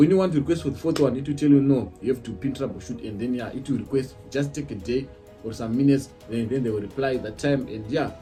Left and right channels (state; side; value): identical; both; correlation 1.00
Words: you want to request for the fourth one, it will tell you no, you have to PIN troubleshoot, and then it will request, just take a day or some minutes, and then they will reply that time, and